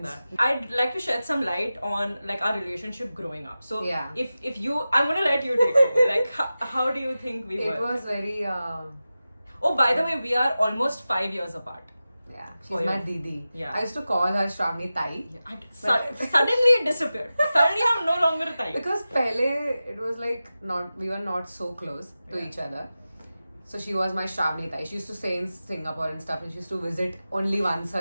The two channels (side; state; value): both; inverted; correlation -0.94